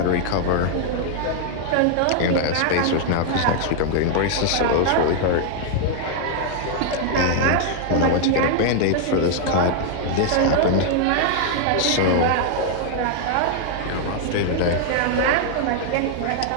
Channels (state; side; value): different; both; correlation 0.00